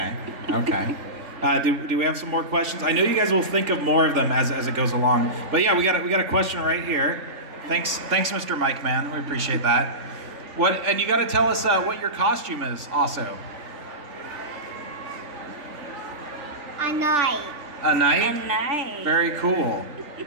Do we have some more questions? I know you guys will think of more of them as it goes along. But yeah, we got a question right here. Thanks, Mr. Mike Man. We appreciate that. And you got to tell us what your costume is also. A knight. A knight? A knight. Very cool.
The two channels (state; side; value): late; left; 3.4 ms